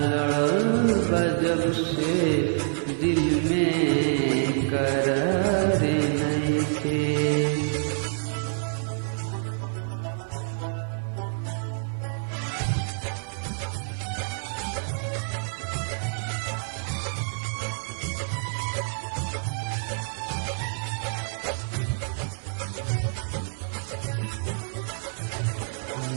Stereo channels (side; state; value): left; silent; digital silence